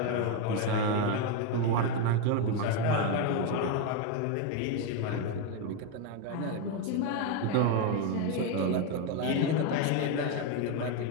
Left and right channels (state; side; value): different; both; correlation 0.02